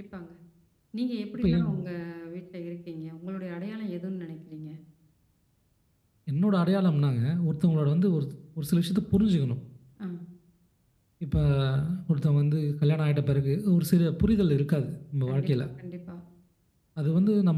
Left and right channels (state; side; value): identical; both; correlation 1.00